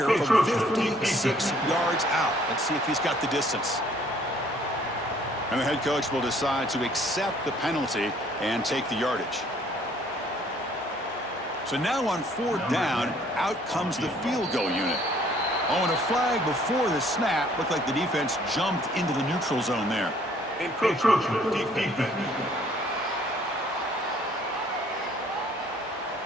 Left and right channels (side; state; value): both; normal; correlation 0.60